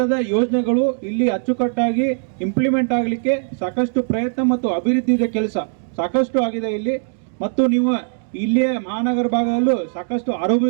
ಯೋಜನೆಗಳು ಇಲ್ಲಿ ಅಚ್ಚುಕಟ್ಟಾಗಿ ಇಂಪ್ಲಿಮೆಂಟ್ ಆಗಲಿಕ್ಕೆ ಸಾಕಷ್ಟು ಪ್ರಯತ್ನ ಮತ್ತು ಅಭಿವೃದ್ಧಿಯ ಕೆಲಸ ಸಾಕಷ್ಟು ಆಗಿದೆ ಇಲ್ಲಿ. ಮತ್ತು ನೀವು ಇಲ್ಲಿಯ ಮಹಾನಗರ ಭಾಗದಲ್ಲೂ ಸಾಕಷ್ಟು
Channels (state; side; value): silent; left; digital silence